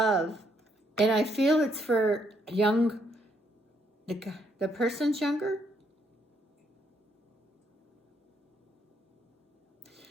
and I feel it's for the person's younger.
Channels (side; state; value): both; normal; correlation 0.73